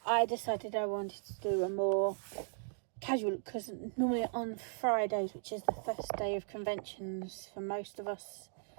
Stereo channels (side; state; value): left; silent; digital silence